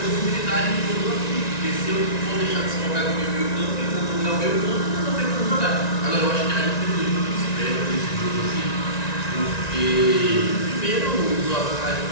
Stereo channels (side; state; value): right; late; 1.9 ms